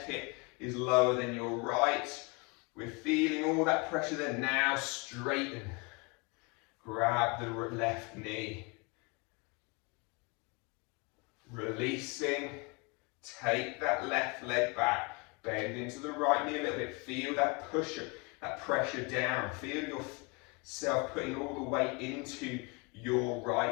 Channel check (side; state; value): right; quieter; 29.4 dB